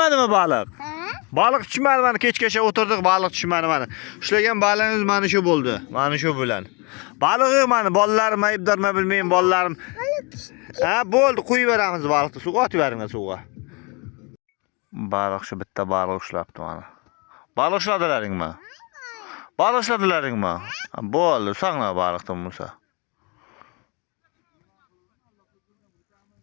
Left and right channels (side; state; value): right; quieter; 30.3 dB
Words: baliq? Baliq tushmadi, mana kechgacha o'tirdik, baliq tushmadi mana. Ushlagan balig'imiz mana shu bo'ldi. Mana shu bilan. Balig'i mana bolalarim aybdormi bilmayman, bolalarim. Ha, bo'ldi, qo'yib beramiz baliqni. Suvga otib beringlar suvga. Baliq shu bitta baliq ushlabdi mana. Baliq ushladilaringmi? Baliq ushladilaringmi? Bo'ldi, saqla baliqdan Musa.